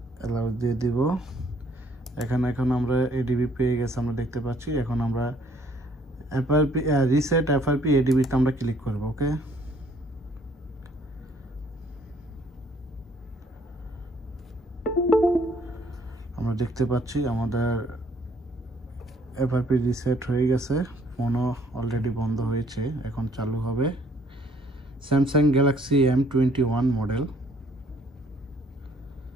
অ্যালাউ দিয়ে দিব। এখানে এখন আমরা এডিবি পেয়ে গেছে, আমরা দেখতে পাচ্ছি। এখন আমরা এফআরপি রিসেট এফআরপি এডিবিতে আমরা ক্লিক করব। ওকে, আমরা দেখতে পাচ্ছি আমাদের এফআরপি রিসেট হয়ে গেছে। ফোনও অলরেডি বন্ধ হয়েছে, এখন চালু হবে। Samsung Galaxy M21 model.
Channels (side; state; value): both; normal; correlation 0.62